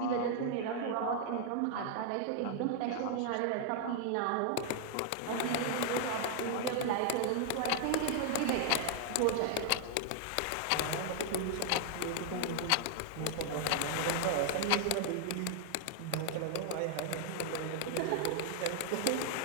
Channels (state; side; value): different; both; correlation 0.00